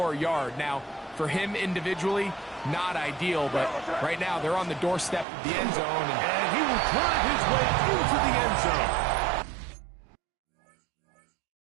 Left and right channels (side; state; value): left; drops out; at 5.2 s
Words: yard? Now, for him individually, not ideal, but right now they're on the doorstep of the end zone. And he will drive his way into the end zone.